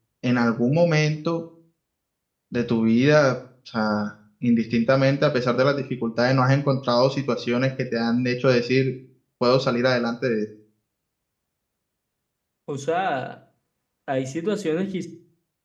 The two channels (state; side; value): identical; both; correlation 1.00